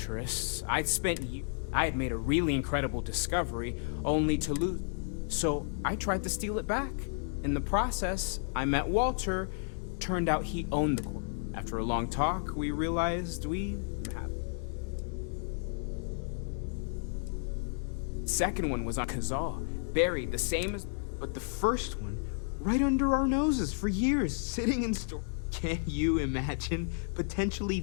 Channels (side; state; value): right; silent; digital silence